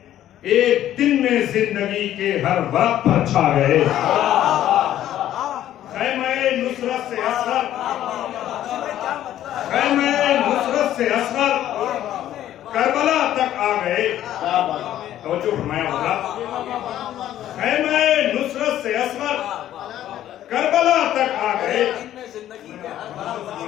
ایک دن میں زندگی کے ہر ورق پر چھا گئے. خیمہ نصرت سے اصغر خیمہ نصرت سے اصغر کربلا تک آ گئے. توجہ فرمایا ہوگا. خیمہ نصرت سے اصغر کربلا تک آ گئے.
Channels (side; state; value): right; quieter; 12.2 dB